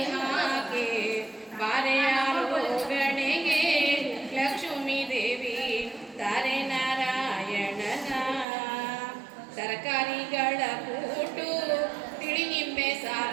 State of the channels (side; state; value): left; drops out; at 8.5 s